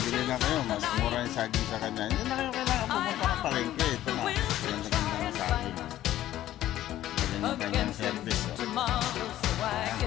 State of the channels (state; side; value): quieter; right; 13.5 dB